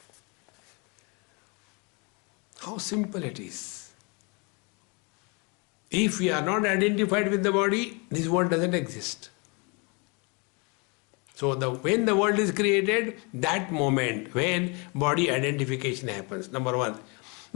How simple it is. If we are not identified with the body, this world doesn't exist. So when the world is created, that moment when body identification happens, number one.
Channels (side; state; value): right; quieter; 31.4 dB